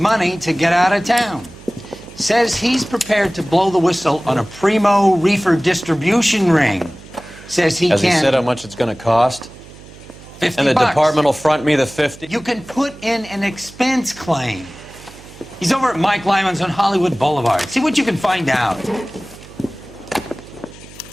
to get out of town. Says he's prepared to blow the whistle on a primo Reefer distribution ring. Says he Has can... he said how much it's going to cost? 50 And the bucks. department will front me the 50? You can put in an expense claim. He's over at Mike Lyman's on Hollywood Boulevard. See what you can find out.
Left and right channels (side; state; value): right; noise; hum, 20 dB below the sound